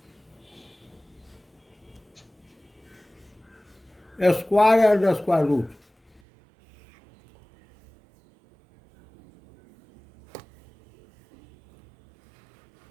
A square and a square root.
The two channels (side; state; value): left; drops out; at 6.2 s